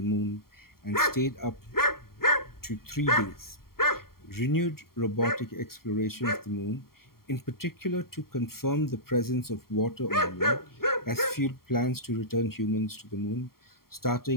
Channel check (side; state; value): right; late; 0.93 ms